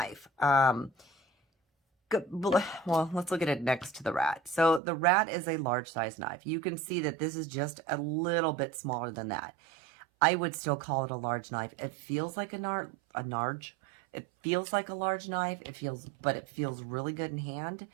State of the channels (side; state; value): left; drops out; at 4.8 s